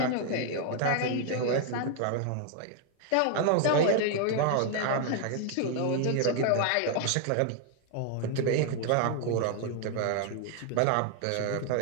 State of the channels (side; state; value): both; different; correlation 0.00